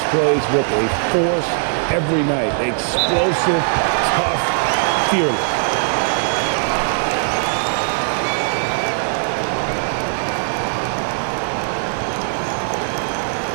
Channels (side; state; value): left; silent; digital silence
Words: plays with a force every night. Explosive, tough, fearless.